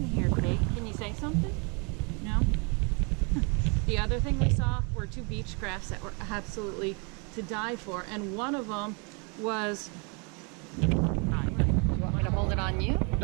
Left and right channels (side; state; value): left; quieter; 33.9 dB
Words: here, Kate. Can you say something? No? The other thing we saw were two beach crafts that were absolutely to die for, and one of them was, you want me to hold it on you?